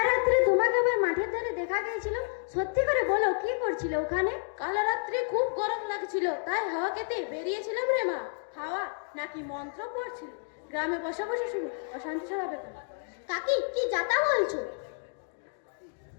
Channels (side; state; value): right; silent; digital silence